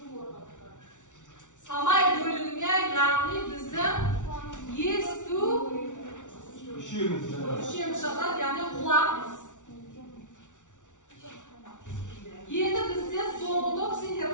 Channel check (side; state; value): right; late; 0.86 ms